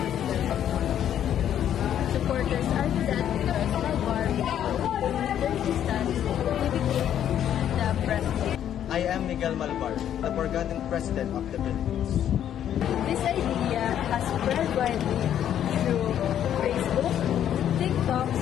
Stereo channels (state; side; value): quieter; right; 10.2 dB